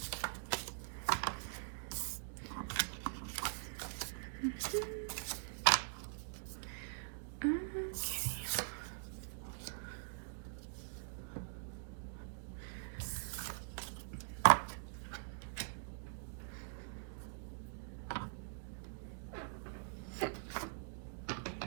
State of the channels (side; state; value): left; silent; digital silence